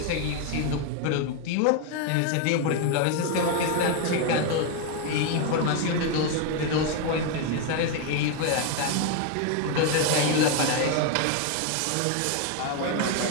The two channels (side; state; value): both; different; correlation 0.01